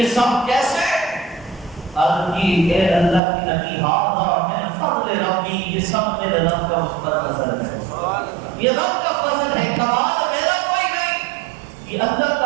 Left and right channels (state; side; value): drops out; left; at 3.2 s